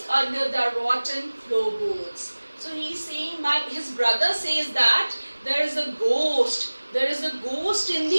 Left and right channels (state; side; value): inverted; both; correlation -1.00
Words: under the rotten floorboards. So he's saying his brother says that there is a ghost in